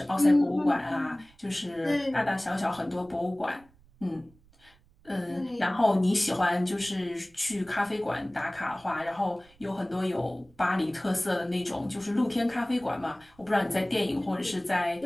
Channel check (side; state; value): right; noise; rumble, 29 dB below the sound